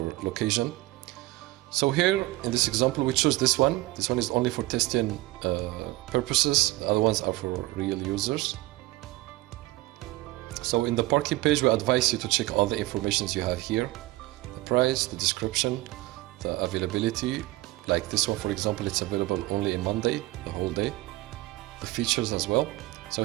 location. So here in this example we choose this one. This one is only for testing purposes. The other ones are for real users. So in the parking page we advise you to check all the informations you have here: the price, the description, the availability. Like this one, for example, it's available only in Monday, the whole day. The features as well. So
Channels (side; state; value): left; quieter; 19.4 dB